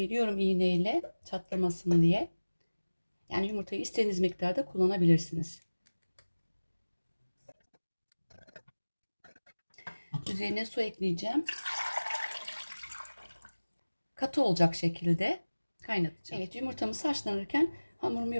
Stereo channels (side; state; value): both; inverted; correlation -1.00